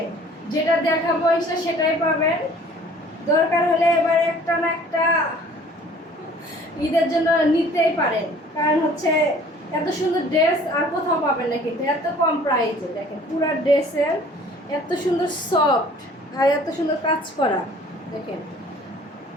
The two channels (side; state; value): both; normal; correlation 0.52